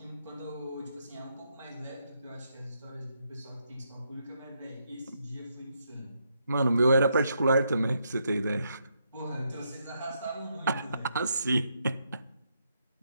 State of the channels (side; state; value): both; inverted; correlation -0.78